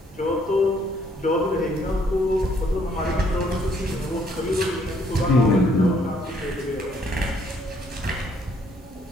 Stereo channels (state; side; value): normal; both; correlation 0.66